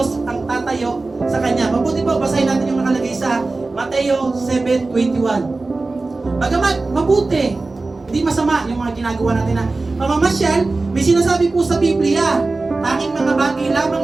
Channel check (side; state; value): left; quieter; 3.5 dB